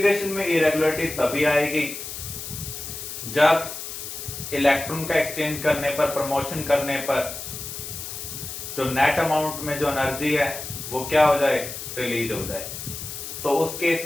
में इरेगुलरिटी तभी आएगी जब इलेक्ट्रॉन का एक्सचेंज करने पर, प्रमोशन करने पर जो नेट अमाउंट में जो एनर्जी है वो क्या हो जाए? रिलीज हो जाए। तो उस केस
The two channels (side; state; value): left; noise; hiss, 8 dB below the sound